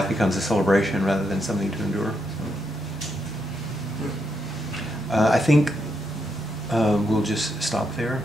becomes a celebration rather than something to endure. I think we'll just stop there.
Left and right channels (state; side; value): normal; both; correlation 0.80